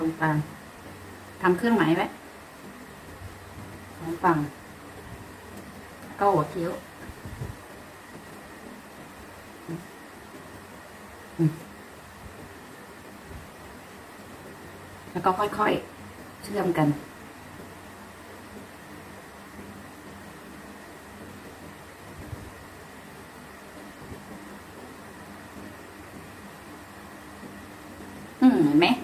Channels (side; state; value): both; identical; correlation 1.00